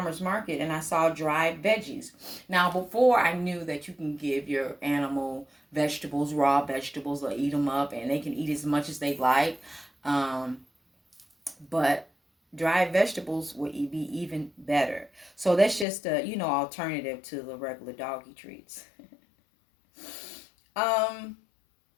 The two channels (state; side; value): drops out; right; at 15.9 s